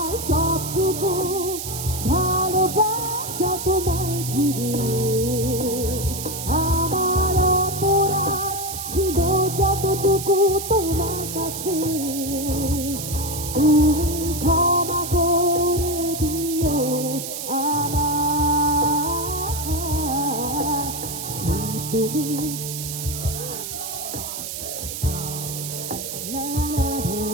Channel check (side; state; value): right; noise; hiss, 6 dB below the sound